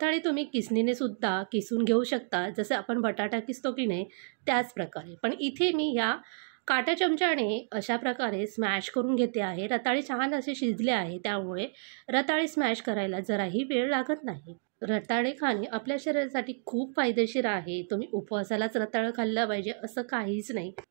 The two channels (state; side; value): silent; left; digital silence